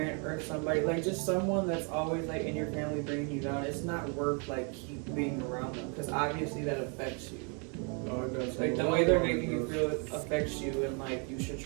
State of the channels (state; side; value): quieter; left; 36.5 dB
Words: or somebody, like just someone that's always like in your family bringing you down, it's not worth like keep being around them, because obviously that affects you. Oh, it does. Like the way they're making you feel affects you, and like you should